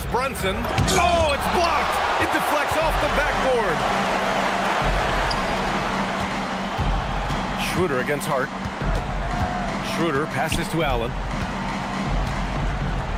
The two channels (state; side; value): identical; both; correlation 1.00